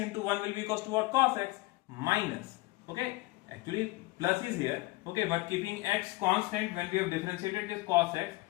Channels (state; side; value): quieter; right; 21.6 dB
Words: 1 will be equals to what? Cos x minus. Okay. Actually plus is here. Okay. But keeping x constant, when we have differentiated this cos x,